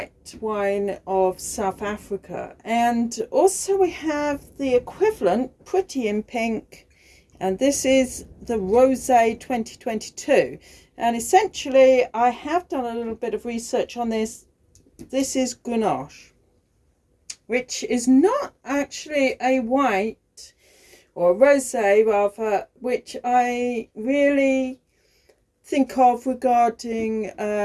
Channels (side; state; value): both; identical; correlation 1.00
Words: wine of South Africa. And also we have the equivalent, Pretty in Pink, and this is the Rosé 2022. And essentially, I have done a little bit of research on this. This is Grenache, which is not actually a white, or a rosé rather, which I really think of regarding